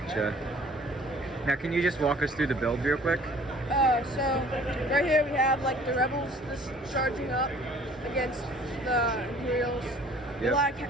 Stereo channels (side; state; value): both; normal; correlation 0.52